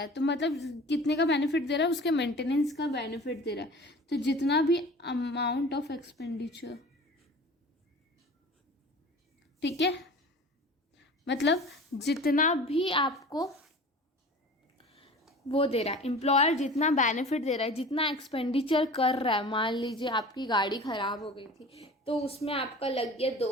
है, तो मतलब कितने का बेनिफिट दे रहा है? उसके मेंटेनेंस का बेनिफिट दे रहा है। तो जितना भी अमाउंट ऑफ एक्सपेंडिचर, ठीक है, मतलब जितना भी आपको वो दे रहा है, एम्प्लॉयर जितना बेनिफिट दे रहा है, जितना एक्सपेंडिचर कर रहा है। मान लीजिए आपकी गाड़ी ख़राब हो गई थी, तो उसमें आपका लग गया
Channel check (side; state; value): both; normal; correlation 0.40